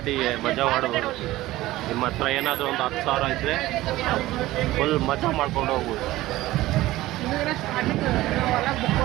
ಮಜಾ ಮಾಡ್ಬೋದು. ನಿಮ್ಮ ಹತ್ರ ಏನಾದರೂ ಒಂದು 10,000 ಇದ್ದರೆ ಫುಲ್ ಮಜಾ ಮಾಡ್ಕೊಂಡು ಹೋಗ್ಬೋದು.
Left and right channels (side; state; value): left; quieter; 17.0 dB